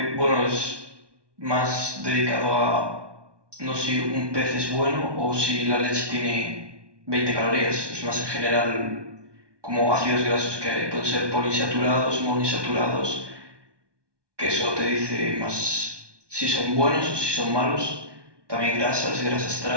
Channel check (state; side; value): late; left; 1.2 ms